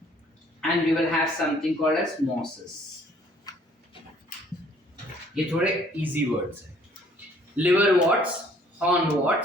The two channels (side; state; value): both; normal; correlation 0.59